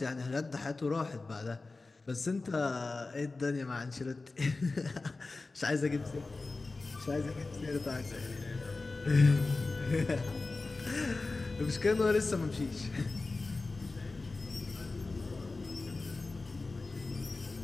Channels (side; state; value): right; quieter; 3.6 dB